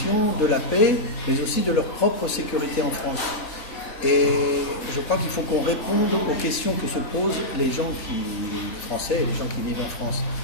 de la paix, mais aussi de leur propre sécurité en France. Et je crois qu'il faut qu'on réponde aux questions que se posent les gens français et les gens qui vivent en France.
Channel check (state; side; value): late; right; 3.3 ms